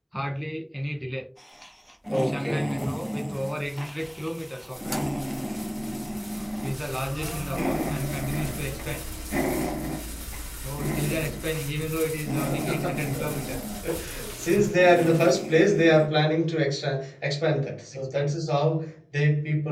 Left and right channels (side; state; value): both; identical; correlation 1.00